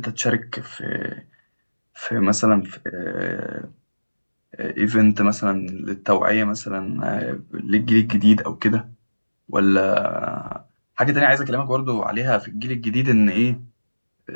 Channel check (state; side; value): inverted; both; correlation -1.00